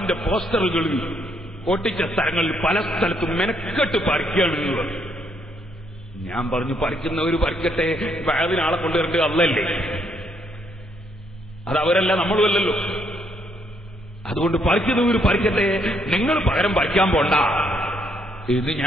പോസ്റ്ററുകൾ ഒട്ടിച്ച സ്ഥലങ്ങളിൽ പല സ്ഥലത്തും മെനക്കെട്ട് പറിക്കുകയാണ്. ഞാൻ പറഞ്ഞു, പറിക്കുന്നവര് പറിക്കട്ടെ, വാതിനാളെ കൊണ്ടുവരേണ്ടത് അല്ലല്ലേ, അത് അവരല്ല, നമ്മളും അല്ലല്ലോ. അതുകൊണ്ട് പറിക്കുന്നവര് പറിക്കട്ടെ, നിങ്ങൾ പകരം പറിക്കാൻ പോണ്ട എന്ന്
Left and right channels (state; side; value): normal; both; correlation 0.72